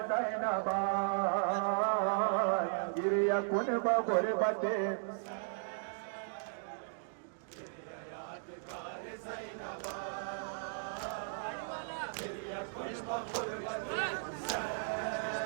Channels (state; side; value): silent; left; digital silence